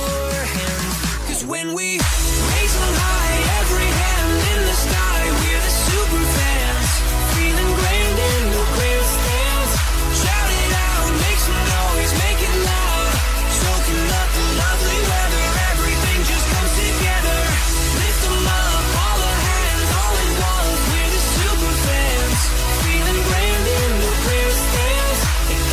hands. Cause when we raise them high, every hand in the sky, we're the super fans, feeling grand in the grandstands. Shout it out, make some noise, make it loud, soaking up the lovely weather, everything just comes together. Lift them up, all the hands, all at once, we're the super fans, feeling grand in the grandstands. And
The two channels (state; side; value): identical; both; correlation 1.00